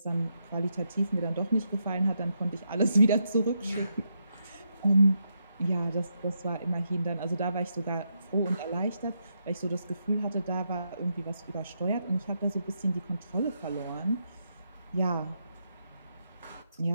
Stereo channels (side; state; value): both; inverted; correlation -0.81